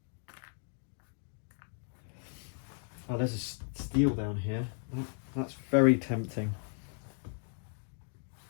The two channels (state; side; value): silent; right; 54 dB below the other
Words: Oh, there's a steel down here. That's very tempting.